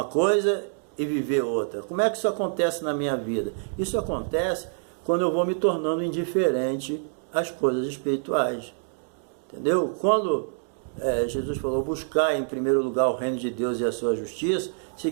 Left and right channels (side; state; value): left; silent; digital silence